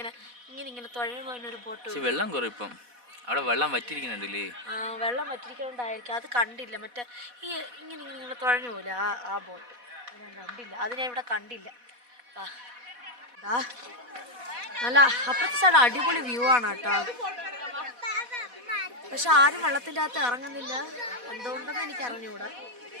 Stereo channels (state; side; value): late; left; 4.1 ms